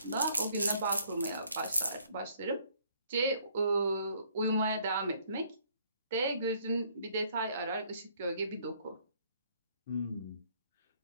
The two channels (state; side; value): inverted; both; correlation -0.63